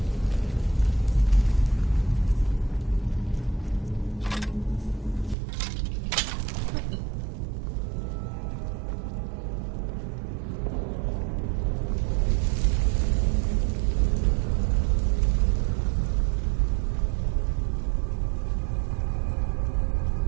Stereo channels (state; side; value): drops out; left; at 5.4 s